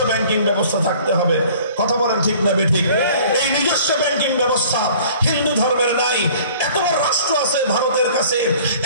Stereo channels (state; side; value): inverted; both; correlation -0.50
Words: ব্যাংকিং ব্যবস্থা থাকতে হবে। কথা বলেন ঠিক না বেঠিক? এই নিজস্ব ব্যাংকিং ব্যবস্থা হিন্দু ধর্মের নাই। এত বড় রাষ্ট্র আছে ভারতের কাছে,